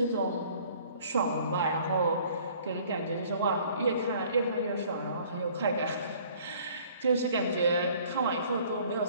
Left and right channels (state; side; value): inverted; both; correlation -0.55